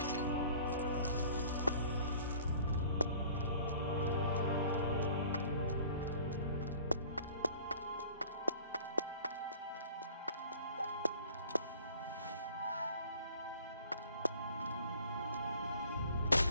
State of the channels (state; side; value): inverted; both; correlation -0.49